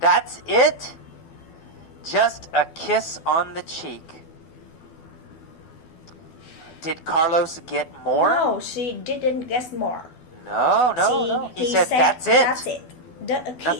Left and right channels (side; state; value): right; late; 12 ms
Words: it? Just a kiss on the cheek." Did Carlos get more? No, she didn't get more. No. He said, "That's it." That's it. A kiss